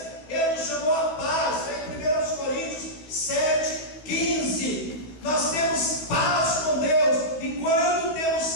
Ele nos chamou à paz. Em 1 Coríntios 7:15, nós temos paz com Deus, e quando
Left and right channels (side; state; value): right; late; 15 ms